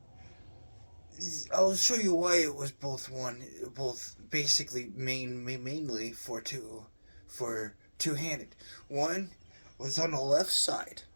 I'll show you why it was both basically mainly for two-handed. One was on the left side.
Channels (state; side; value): inverted; both; correlation -1.00